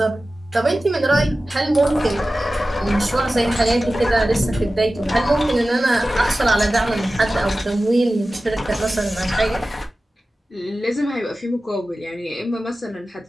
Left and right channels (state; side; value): normal; both; correlation 0.95